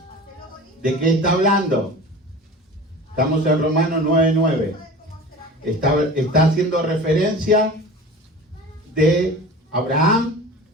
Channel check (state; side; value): normal; both; correlation 0.37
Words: ¿De qué está hablando? Estamos en Romanos 9:9. Está haciendo referencia de Abraham